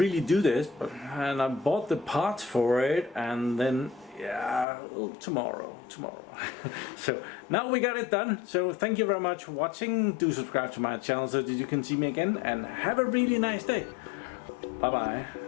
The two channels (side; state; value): right; drops out; at 4.7 s